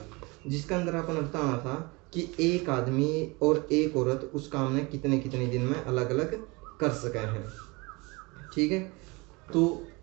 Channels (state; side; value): quieter; left; 26.0 dB